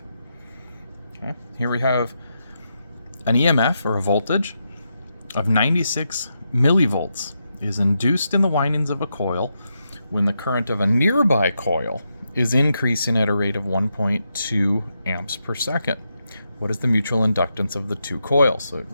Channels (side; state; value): both; inverted; correlation -0.84